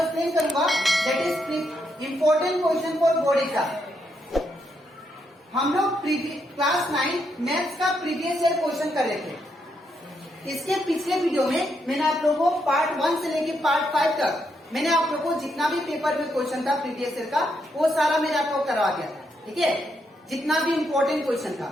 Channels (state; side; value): normal; both; correlation 0.79